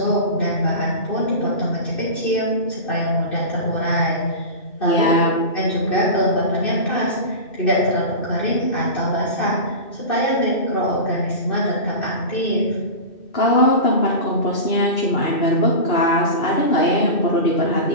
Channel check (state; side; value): late; right; 2.6 ms